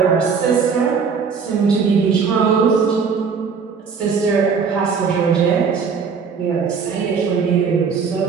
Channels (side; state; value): left; quieter; 5.8 dB